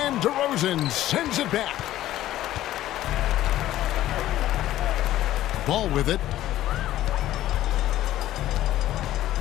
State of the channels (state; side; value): quieter; right; 14.0 dB